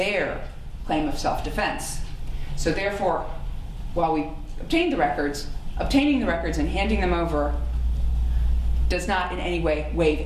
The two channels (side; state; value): both; identical; correlation 1.00